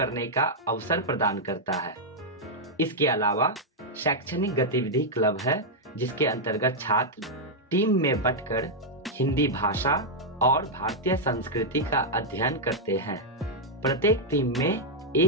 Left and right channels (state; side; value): normal; both; correlation -0.03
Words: का अवसर प्रदान करता है। इसके अलावा शैक्षणिक गतिविधि क्लब है जिसके अंतर्गत छात्र टीम में बंटकर हिंदी भाषा और भारतीय संस्कृति का अध्ययन करते हैं। प्रत्येक टीम में